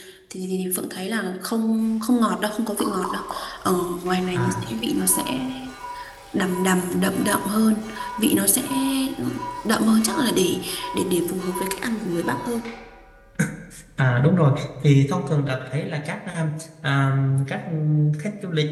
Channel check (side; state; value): both; identical; correlation 1.00